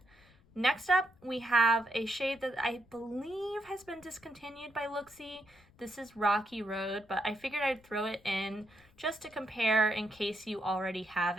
Next up, we have a shade that I believe has been discontinued by Looksy. This is Rocky Road, but I figured I'd throw it in just to compare in case you already have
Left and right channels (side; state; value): left; noise; rumble, 28 dB below the sound